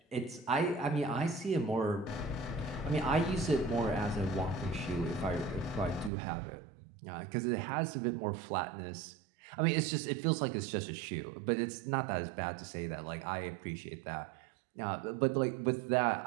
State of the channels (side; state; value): left; drops out; at 6.1 s